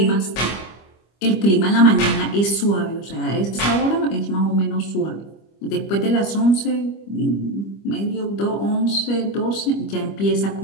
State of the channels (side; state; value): right; late; 25 ms